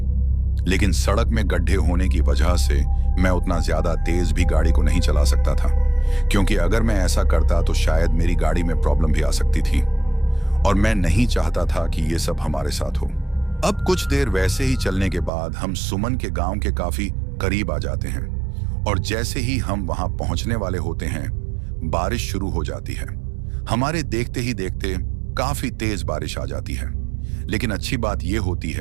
लेकिन सड़क में गड्ढे होने की वजह से मैं उतना ज्यादा तेज भी गाड़ी को नहीं चला सकता था, क्योंकि अगर मैं ऐसा करता तो शायद मेरी गाड़ी में प्रॉब्लम भी आ सकती थी और मैं नहीं चाहता था कि ये सब हमारे साथ हो। अब कुछ देर वैसे ही चलने के बाद हम सुमन के गांव के काफी करीब आ जाते हैं और जैसे ही हम वहां पहुंचने वाले होते हैं बारिश शुरू हो जाती है। हमारे देखते ही देखते काफी तेज बारिश आ जाती है। लेकिन अच्छी बात यह होती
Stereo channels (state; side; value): drops out; left; at 15.3 s